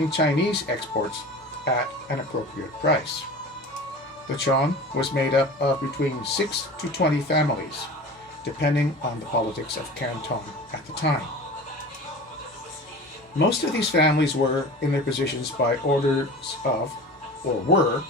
Chinese exports at an appropriate price. The Chong was made up of between 6 to 20 families, depending on the politics of Canton at the time. Most of these families were in their positions by orders of, or were,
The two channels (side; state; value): both; normal; correlation 0.37